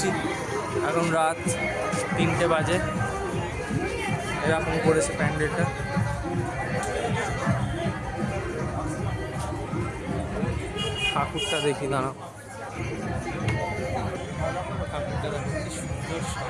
এখন রাত 3টে বাজে। এরকম করেছে প্যান্ডেলটা। ঠাকুরটা দেখি, দাঁড়াও। ঠাকুরটা দেখো কি সুন্দর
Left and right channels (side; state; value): both; identical; correlation 1.00